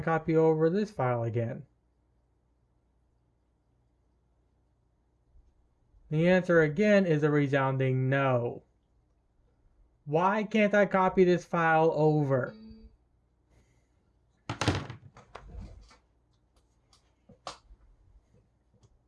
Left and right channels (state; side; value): identical; both; correlation 1.00